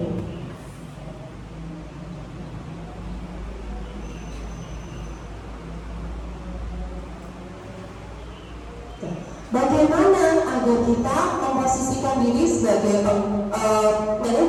Bagaimana agar kita memposisikan diri sebagai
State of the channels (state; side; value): identical; both; correlation 1.00